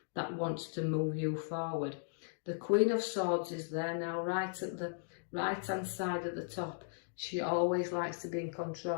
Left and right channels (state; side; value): silent; right; digital silence